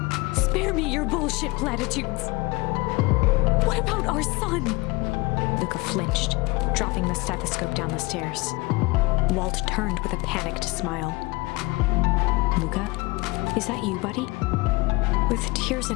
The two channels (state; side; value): quieter; right; 23.1 dB